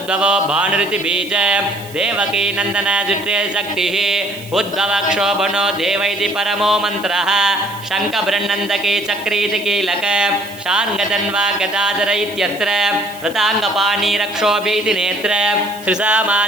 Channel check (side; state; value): right; noise; hiss, 19 dB below the sound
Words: भानुरिति बीज देवकी नन्दन जुट्रे शक्तिः उद्भवक्षोभनो देव इति परमो मन्त्रः शङ्खबृन्नन्दके चक्रीति कीलक शार्ङ्गधन्वा गदाधर इत्यत्र रताङ्गपाणि रक्षोभीति नेत्र